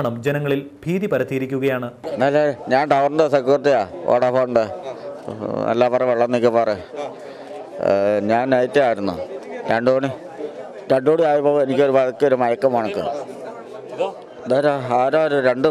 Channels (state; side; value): identical; both; correlation 1.00